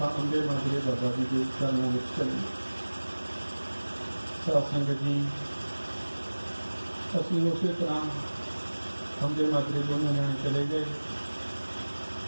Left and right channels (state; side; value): inverted; both; correlation -1.00